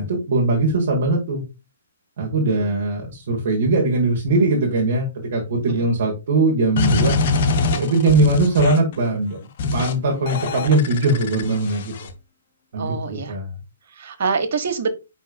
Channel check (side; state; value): both; inverted; correlation -0.31